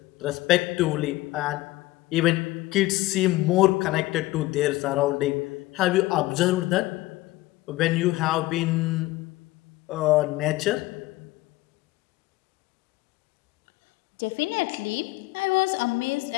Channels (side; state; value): right; quieter; 18.5 dB